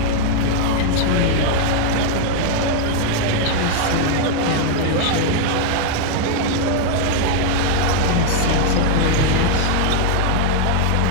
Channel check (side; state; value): both; different; correlation 0.00